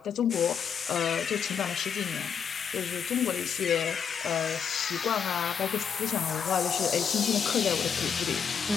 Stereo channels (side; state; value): right; quieter; 7.2 dB